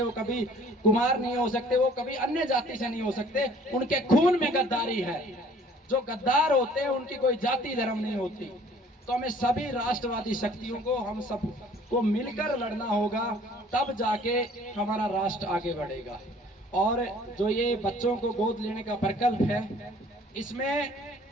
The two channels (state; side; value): normal; both; correlation 0.54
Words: वो कभी कुमार नहीं हो सकते, वो कभी अन्य जाति से नहीं हो सकते। उनके खून में गद्दारी है। जो गद्दार होते हैं उनकी कोई जाति धर्म नहीं होती। तो हमें सभी राष्ट्रवादी शक्तियों को, हम सब को मिलकर लड़ना होगा, तब जाके हमारा राष्ट्र आगे बढ़ेगा। और जो ये बच्चों को गोद लेने का प्रकल्प है, इसमें